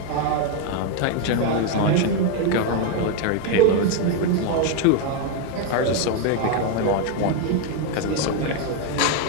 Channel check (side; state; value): both; different; correlation 0.01